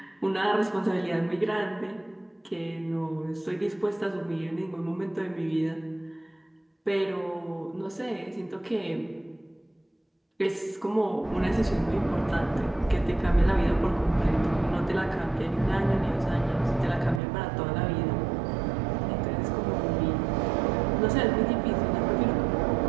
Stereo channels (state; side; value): drops out; left; at 17.2 s